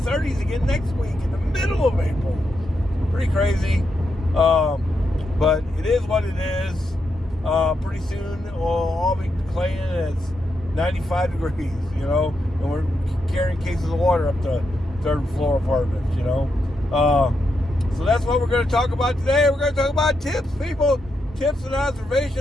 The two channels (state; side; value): normal; both; correlation 0.83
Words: again next week in the middle of April. Pretty crazy. But it is what it is. Pretty soon we'll all be claiming it's 95 degrees, and we're carrying cases of water up to third floor apartments, So that's what we're going to talk about today. We're going to talk about tips, people. Tips and